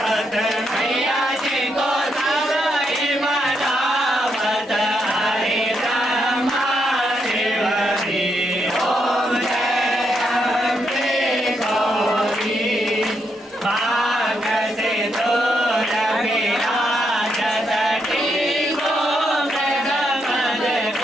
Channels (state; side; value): normal; both; correlation 0.80